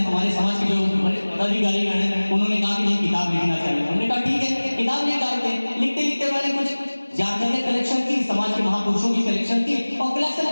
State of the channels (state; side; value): inverted; both; correlation -1.00